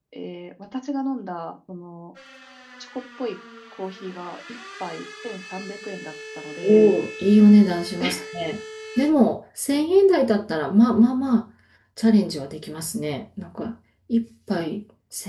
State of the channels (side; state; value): both; identical; correlation 1.00